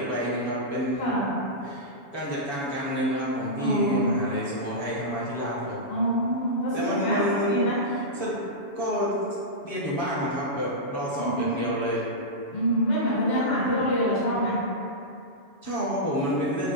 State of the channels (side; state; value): right; late; 7.1 ms